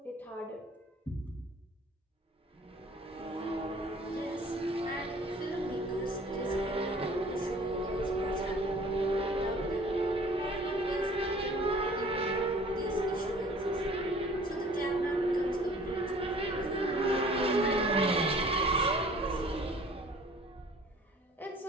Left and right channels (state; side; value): normal; both; correlation 0.50